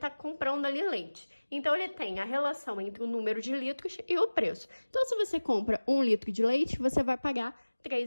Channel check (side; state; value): both; inverted; correlation -1.00